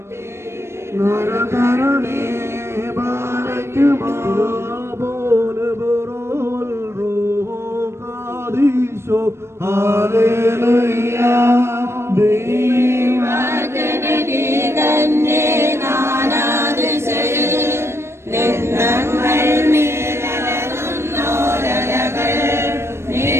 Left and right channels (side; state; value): left; late; 0.13 ms